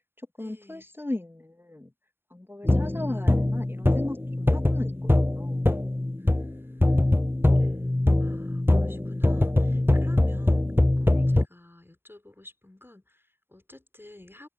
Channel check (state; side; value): late; left; 0.11 ms